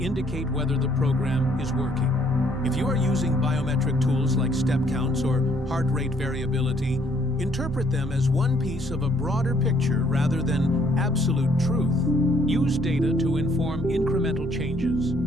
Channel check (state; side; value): normal; both; correlation 0.65